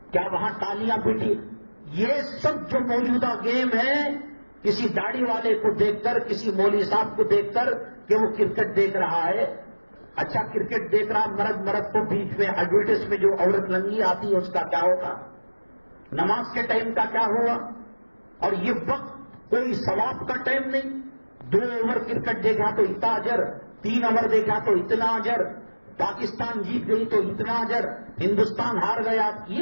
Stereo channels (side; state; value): both; inverted; correlation -1.00